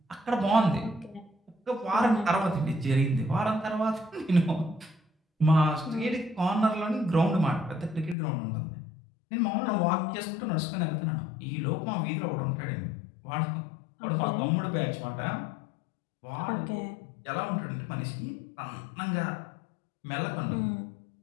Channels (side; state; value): right; drops out; at 8.2 s